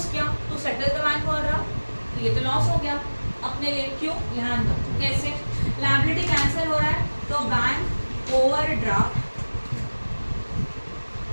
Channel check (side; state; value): both; inverted; correlation -1.00